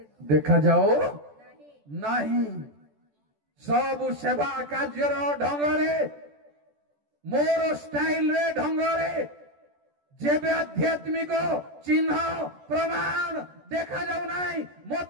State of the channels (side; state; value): left; late; 14 ms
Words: ଦେଖାଯାଉ ନାହିଁ। ସବୁ ସେବା କାର୍ଯ୍ୟର ଢଙ୍ଗରେ, ମୋର ଷ୍ଟାଇଲରେ, ଢଙ୍ଗରେ, ଯେବେ ଆଧ୍ୟାତ୍ମିକ ଚିହ୍ନ ପ୍ରମାଣ ଦେଖାଯାଉ ନାହିଁ,